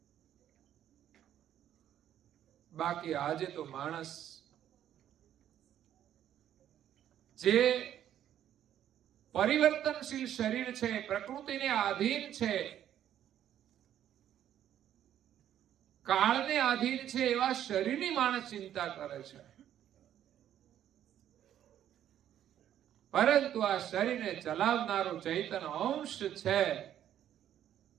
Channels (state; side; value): quieter; left; 10.9 dB